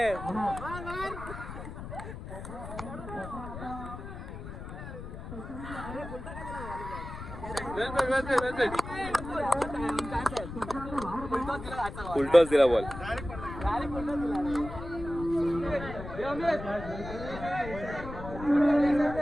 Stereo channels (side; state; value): left; noise; rumble, 10 dB below the sound